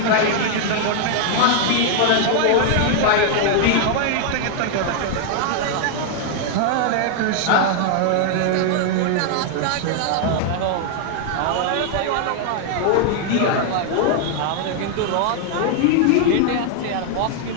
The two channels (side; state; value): both; different; correlation 0.00